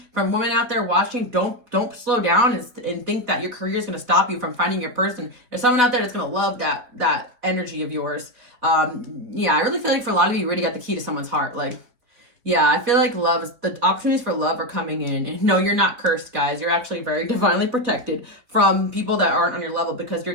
From women out there watching, don't slow down and think that your career is going to stop you from finding your person. There's someone out there that's going to love that energy of yours. Yeah, I really feel like for a lot of you already got the key to someone's heart. Like, yeah, I feel like the opportunities for love are coming in. And no, you're not cursed, guys. You're actually very divinely protected from people that aren't on your level, because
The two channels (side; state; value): left; late; 4.3 ms